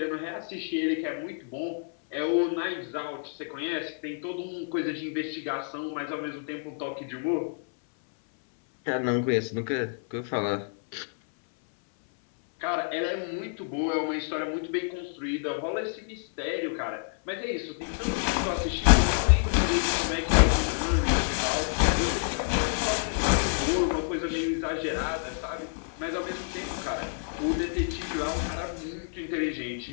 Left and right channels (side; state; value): right; silent; 59 dB below the other